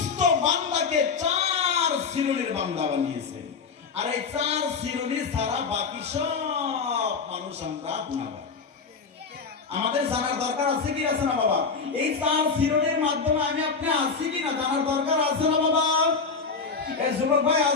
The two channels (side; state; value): right; quieter; 5.1 dB